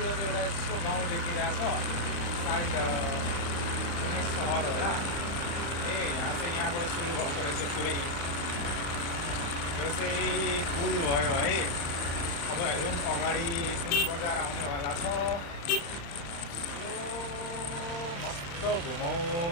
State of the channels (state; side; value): late; right; 35 ms